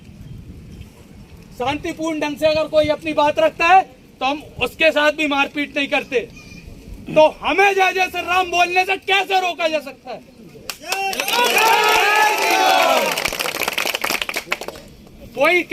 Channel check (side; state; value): both; identical; correlation 1.00